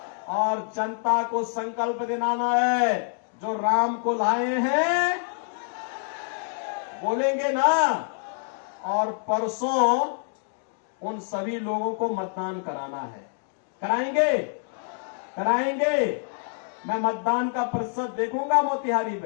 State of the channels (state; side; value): silent; right; 61 dB below the other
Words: और जनता को संकल्प दिलाना है, जो राम को लाए हैं, बोलेंगे ना? और परसों उन सभी लोगों को मतदान कराना है। कराएंगे? कराएंगे? मैं मतदान का प्रतिशत देखूंगा मोतिहारी